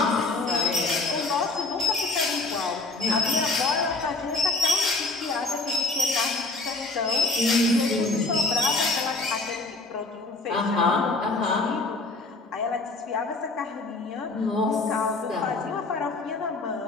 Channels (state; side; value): quieter; right; 3.4 dB